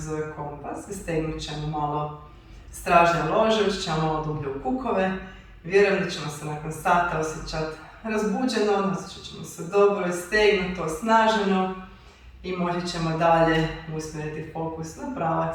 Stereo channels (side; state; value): both; identical; correlation 1.00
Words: zove kompas i stegnut ćemo malo stražnje lože, ući ćemo malo dublje u kukove. Vjerujem da ćemo se nakon sata osjećati razbuđeno, osjećat ćemo se dobro i stegnuto, osnaženo i moći ćemo dalje usmjeriti fokus na